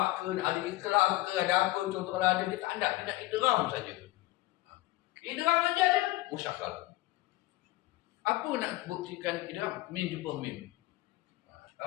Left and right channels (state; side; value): quieter; right; 18.5 dB